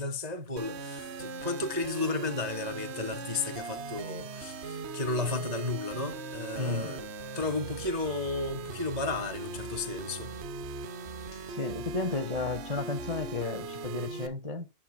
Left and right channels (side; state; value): left; late; 2.0 ms